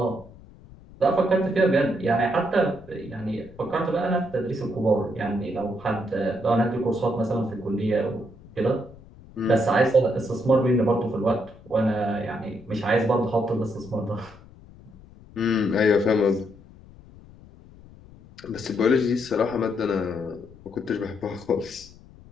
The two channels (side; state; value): left; noise; rumble, 22 dB below the sound